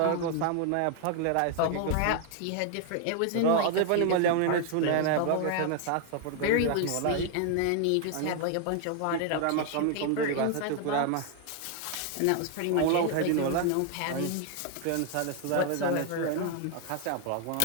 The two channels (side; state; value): both; different; correlation 0.00